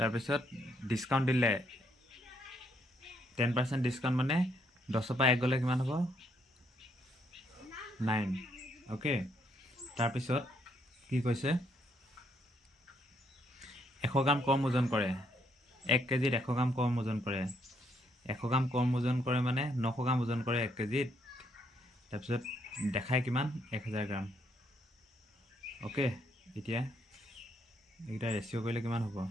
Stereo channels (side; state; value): both; normal; correlation 0.72